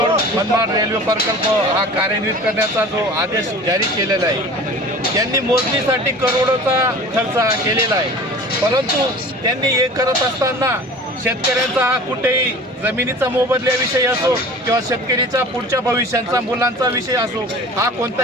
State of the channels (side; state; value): both; normal; correlation 0.41